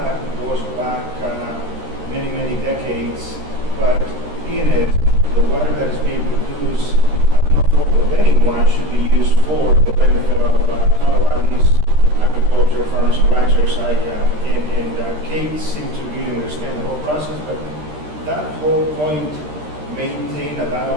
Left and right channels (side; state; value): left; late; 13 ms